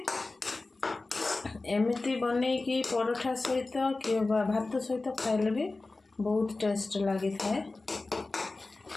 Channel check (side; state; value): right; quieter; 3.3 dB